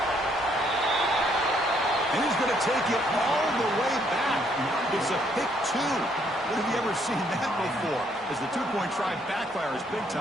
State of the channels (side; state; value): both; normal; correlation 0.69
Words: And he's going to take it all the way back. It's a pick 2. When have you ever seen that before? As the 2-point try backfires big